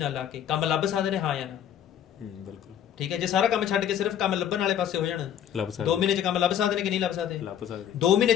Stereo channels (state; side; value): quieter; right; 10.0 dB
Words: ਲਾ ਕੇ ਕੰਮ ਲੱਭ ਸਕਦੇ ਨੇ, ਹਾਂ ਜਾਂ ਨਾ? ਬਿਲਕੁਲ, ਠੀਕ ਹੈ। ਜੇ ਸਾਰਾ ਕੰਮ ਛੱਡ ਕੇ ਸਿਰਫ ਕੰਮ ਲੱਭਣ ਵਾਲੇ ਪਾਸੇ ਹੋ ਜਾਣ, 2 ਮਹੀਨੇ 'ਚ ਕੰਮ ਲੱਭ ਸਕਦੇ ਨੇ ਕਿ ਨਹੀਂ ਲੱਭ ਸਕਦੇ? 2 ਮਹੀਨੇ